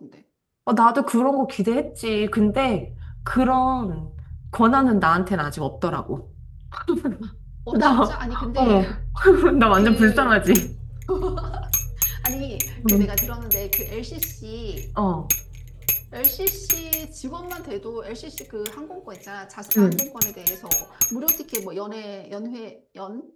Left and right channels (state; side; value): identical; both; correlation 1.00